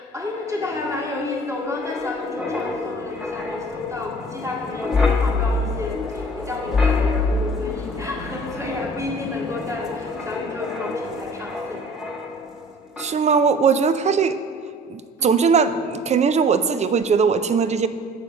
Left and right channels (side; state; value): both; normal; correlation 0.48